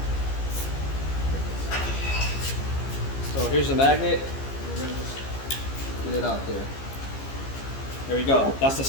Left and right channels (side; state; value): right; late; 15 ms